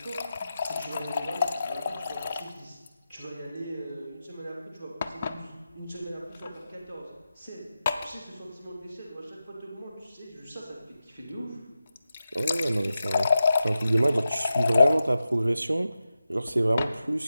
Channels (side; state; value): both; inverted; correlation -0.91